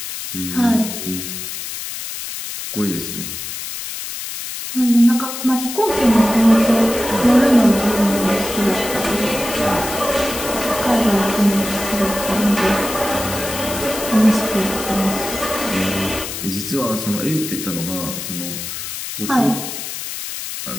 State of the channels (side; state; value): left; noise; hiss, 7 dB below the sound